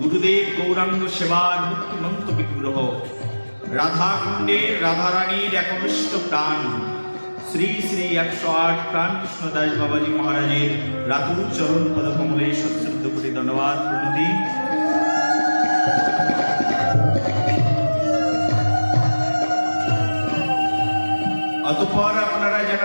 গুরুদেব গৌরাঙ্গ সেবার মুক্তিমন্ত বিগ্রহ রাধাকুণ্ডের রাধারানীর একনিষ্ঠ প্রাণ শ্রী শ্রী 108 প্রাণ কৃষ্ণদাস বাবাজি মহারাজের রাতুল চরণ পদকমলে সশ্রদ্ধ কোটি ধন্যবাদ প্রণতি। অতঃপর আপনারা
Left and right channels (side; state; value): both; inverted; correlation -1.00